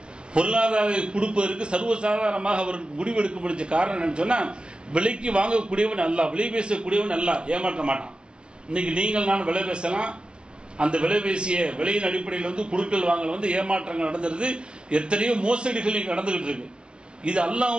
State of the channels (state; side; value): late; left; 0.051 ms